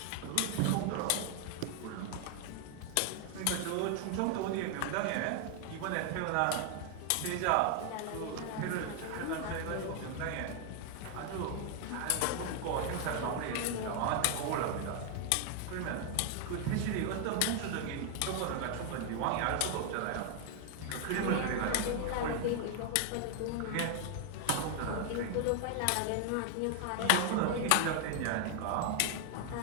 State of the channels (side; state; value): both; different; correlation 0.00